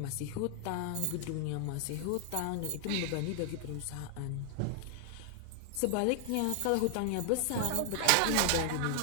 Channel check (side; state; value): both; different; correlation 0.00